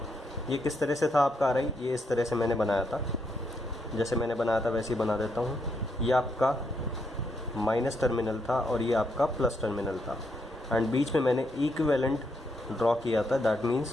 ये किस तरह से था आपका आ रही, ये इस तरह से मैंने बनाया था, जैसे मैंने बनाया था वैसे ही बना देता हूँ। ये आपका माइनस टर्मिनल था और ये आपका प्लस टर्मिनल था, एंड बीच में मैंने इक्विवेलेंट ड्रॉ किया था। दैट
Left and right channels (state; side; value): normal; both; correlation 0.78